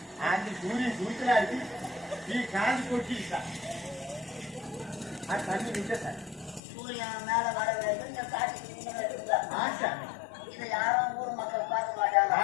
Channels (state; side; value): drops out; right; at 6.6 s